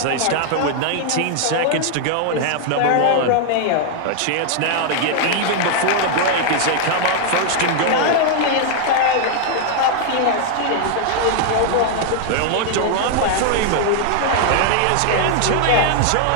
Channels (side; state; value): both; different; correlation 0.00